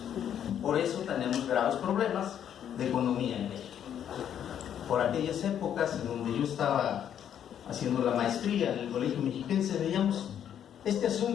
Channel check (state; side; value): quieter; right; 9.5 dB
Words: Por eso tenemos graves problemas de economía en México. Por aquellas épocas en donde yo estaba haciendo la maestría en el Colegio Mexiquense, veíamos este